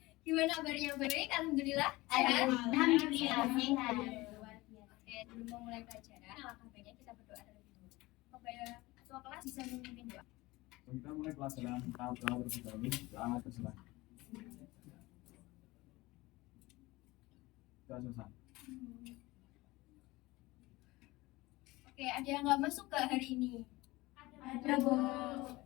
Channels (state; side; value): quieter; right; 20.6 dB